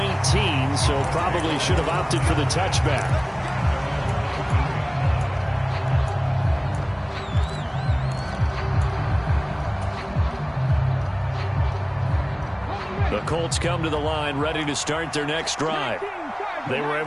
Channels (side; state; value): both; identical; correlation 1.00